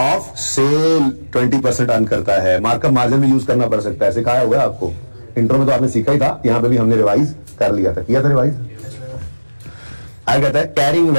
sale 20% earn करता है। मार्कअप मार्जिन भी यूज करना पड़ सकता है, सिखाया हुआ है आपको इंट्रो में, तो आपने सीखा ही था, यहां पे भी हमने रिवाइज कर लिया था, किया था रिवाइज। आगे कहता है carrying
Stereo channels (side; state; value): both; inverted; correlation -1.00